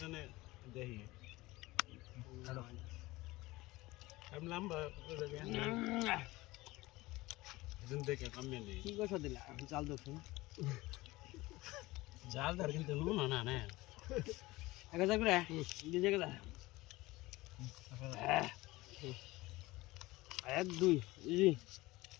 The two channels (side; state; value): right; quieter; 20.0 dB